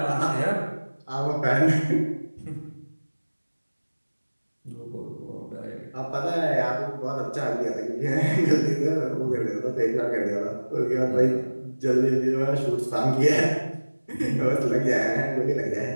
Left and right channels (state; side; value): inverted; both; correlation -1.00